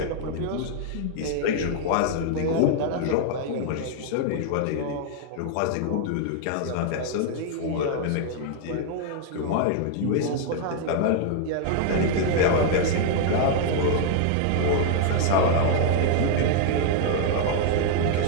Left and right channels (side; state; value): both; different; correlation 0.00